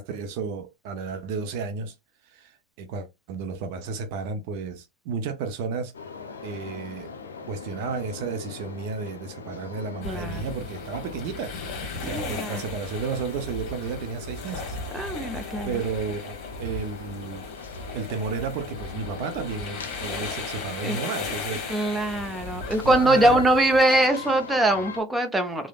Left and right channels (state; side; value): normal; both; correlation 0.51